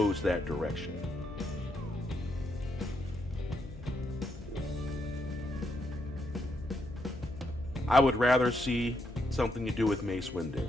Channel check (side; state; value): left; noise; hum, 14 dB below the sound